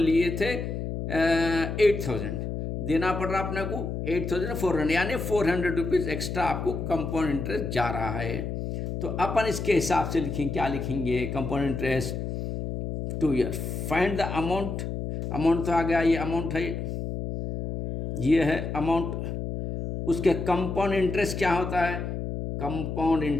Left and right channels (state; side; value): noise; left; hum, 4 dB below the sound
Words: थे 8,000, देना पड़ रहा अपने को 8,400, यानी 400 रुपीज़ एक्स्ट्रा आपको कंपाउंड इंटरेस्ट जा रहा है। तो अपन इसके हिसाब से लिखेंगे, क्या लिखेंगे, compound interest 2 year. Find the amount, amount तो आ गया, ये अमाउंट है, ये है अमाउंट। उसके कंपाउंड इंटरेस्ट क्या होता है, कंपाउंड